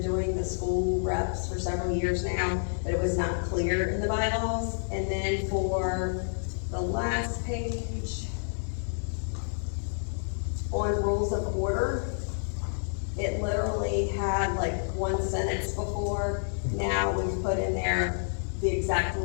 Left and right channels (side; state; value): right; silent; digital silence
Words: doing the school reps for several years now, but it was not clear in the bylaws. And then for the last page, on rules of order, it literally had like one sentence before. Now we've put in there the exact